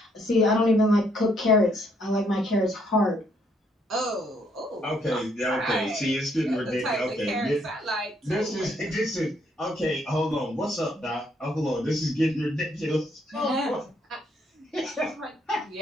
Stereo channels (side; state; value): both; normal; correlation 0.70